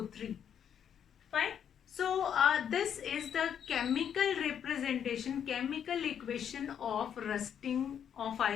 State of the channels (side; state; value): right; quieter; 8.6 dB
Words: Fine. So this is the chemical representation, chemical equation of rusting of